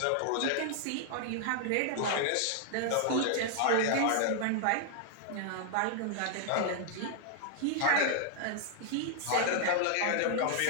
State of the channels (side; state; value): both; different; correlation 0.00